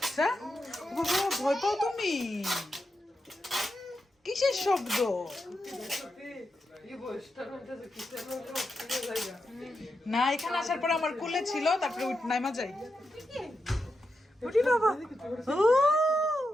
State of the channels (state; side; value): normal; both; correlation 0.87